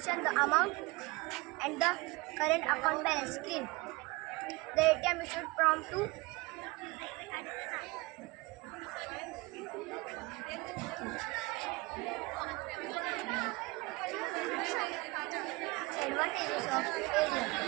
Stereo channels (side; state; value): left; quieter; 23.9 dB